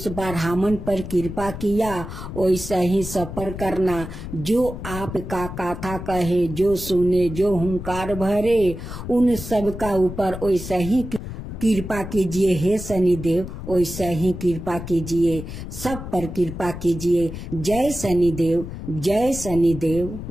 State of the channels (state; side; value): noise; left; rumble, 9 dB below the sound